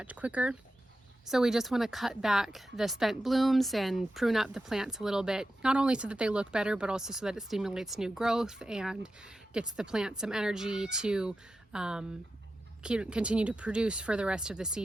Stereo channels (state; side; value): normal; both; correlation 0.91